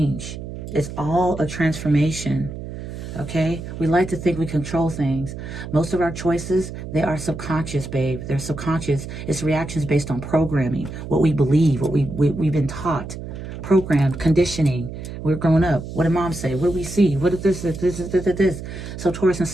It's all a transformation, okay? We like to think we control things. Most of our choices, they are subconscious, babe. They're subconscious. It's reactions based on programming, what we believe, what we've been taught. Programmed, conditioning. We're growing up. What did mom say? What do we see? What is this? So Taurus, in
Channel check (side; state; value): right; noise; hum, 9 dB below the sound